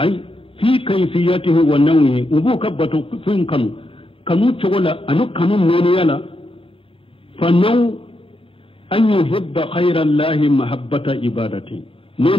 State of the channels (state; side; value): late; right; 0.26 ms